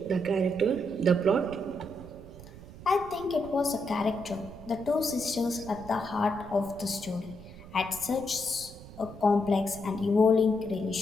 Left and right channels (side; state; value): right; noise; rumble, 16 dB below the sound